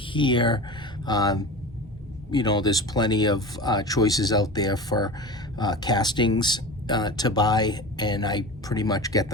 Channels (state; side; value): normal; both; correlation 0.31